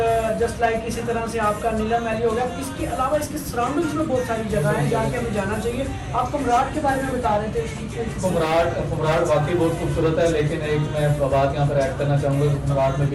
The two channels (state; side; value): identical; both; correlation 1.00